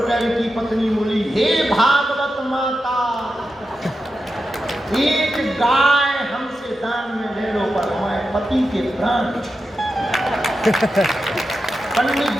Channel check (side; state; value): both; normal; correlation 0.90